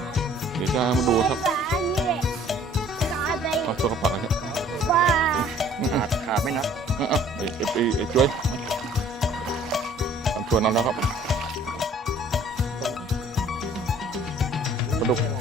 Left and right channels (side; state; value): both; normal; correlation 0.54